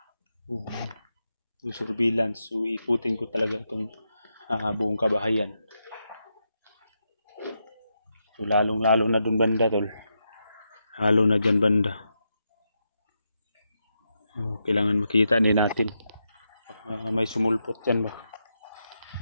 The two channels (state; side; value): inverted; both; correlation -0.85